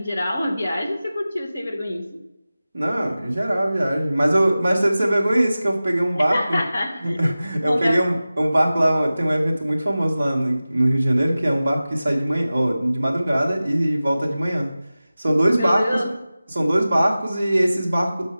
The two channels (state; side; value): inverted; both; correlation -0.96